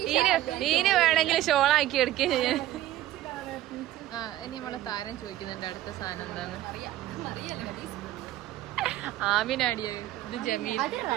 ഈന് വേണമെങ്കിൽ ഷോളാക്കി എടുക്കുകയും ചെയ്യാൻ. ആ ഇനി നമ്മളെ താരം ചോദിക്കുന്നുണ്ട് അടുത്ത സാധനം എന്താണ്. ആമിനാടിയോ? ഇത് ജമീൽ.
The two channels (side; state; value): left; quieter; 14.1 dB